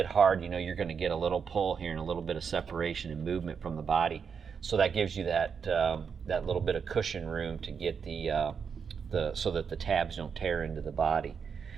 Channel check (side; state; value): left; quieter; 6.4 dB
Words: hard, you know you're going to get a little pull here and a little bit of separation and movement from the body. So that gives you that that little bit of cushion room to get so that the tabs don't tear into the body.